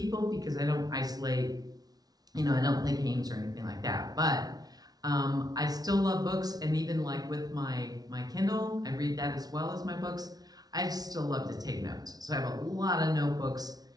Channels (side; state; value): left; late; 0.19 ms